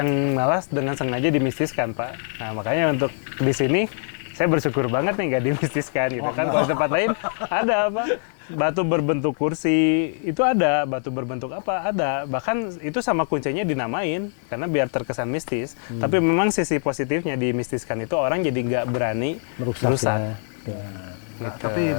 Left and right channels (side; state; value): right; silent; 63 dB below the other